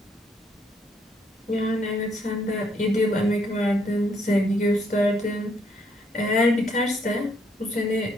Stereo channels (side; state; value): both; normal; correlation 0.70